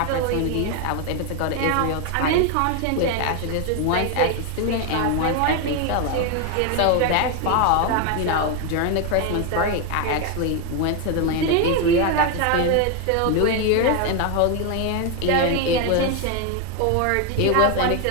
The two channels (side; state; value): both; different; correlation 0.01